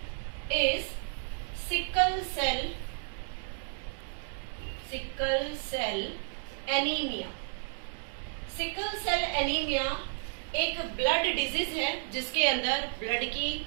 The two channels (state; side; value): silent; left; digital silence